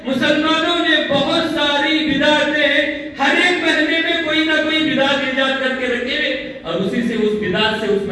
مسلمانوں نے بہت ساری بدعتیں ہر ایک مہینے میں کوئی نہ کوئی بدعت ایجاد کر کے رکھے، اور اسی سے اس بدعت سے اس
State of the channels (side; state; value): both; identical; correlation 1.00